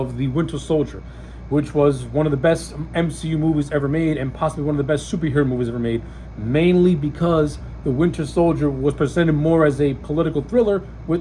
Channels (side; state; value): both; identical; correlation 1.00